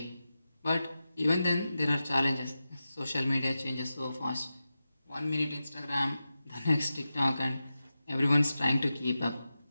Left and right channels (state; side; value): inverted; both; correlation -0.92